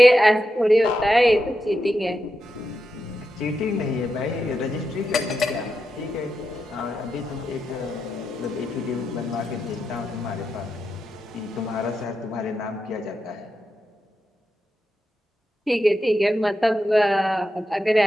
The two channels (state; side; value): normal; both; correlation 0.87